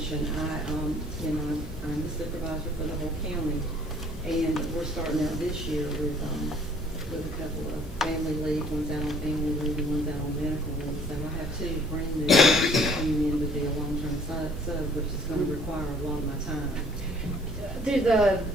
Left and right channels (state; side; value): normal; both; correlation 0.58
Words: I'm the supervisor for the whole county, and we're starting out this year with a couple of family leave, one's out on family leave and one's out on medical leave. So I have two brand new coming in to be a long-term sub, which is going to require a lot of my time. Do the